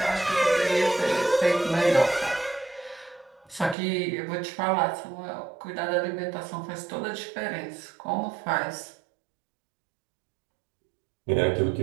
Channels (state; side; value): drops out; left; at 3.8 s